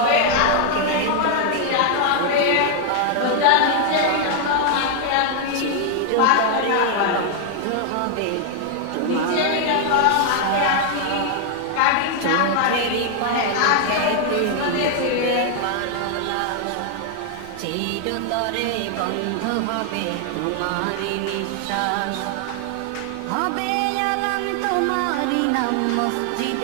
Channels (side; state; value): both; different; correlation 0.00